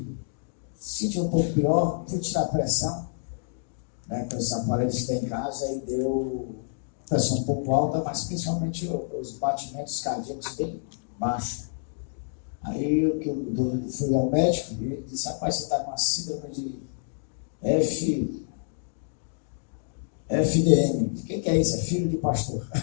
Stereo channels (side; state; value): right; silent; digital silence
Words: um pouco pior, fui tirar a pressão, né, com esses aparelhos que tem em casa, e deu pressão um pouco alta, mas principalmente os batimentos cardíacos bem baixos. Aí eu fui ao médico e ele disse: rapaz, você está com a síndrome de FDM. O que é isso? É filho de pastor.